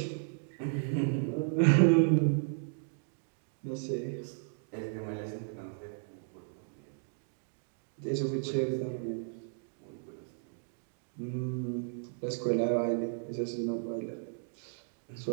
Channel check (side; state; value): left; silent; digital silence